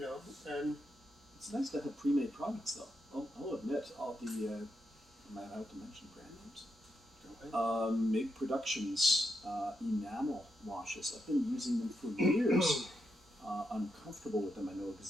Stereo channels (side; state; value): both; normal; correlation 0.83